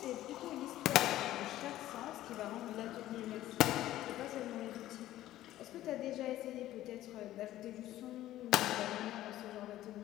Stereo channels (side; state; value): right; quieter; 14.3 dB